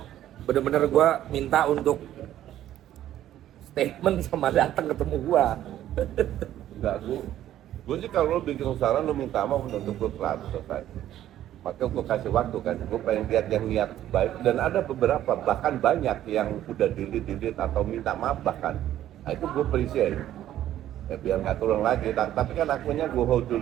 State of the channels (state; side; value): quieter; left; 12.3 dB